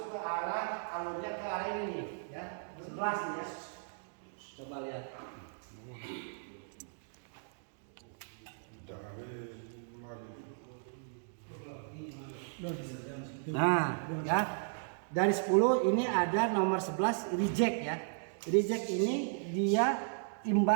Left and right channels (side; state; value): left; silent; digital silence